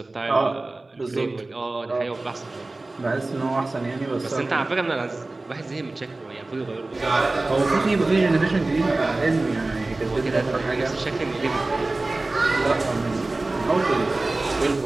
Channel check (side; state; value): left; quieter; 3.1 dB